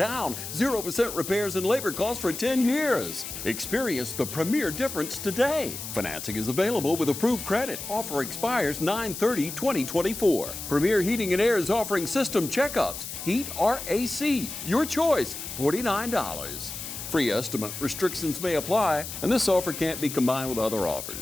0% repairs and labor costs for 10 years. Experience the premier difference today. Financing is available with approved credit. Offer expires 9/30/2024. Premier Heating and Air is offering system checkups. Heat or AC, your choice, $49. Free estimate restrictions may apply, and this offer can't be combined with other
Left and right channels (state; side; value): noise; left; hiss, 8 dB below the sound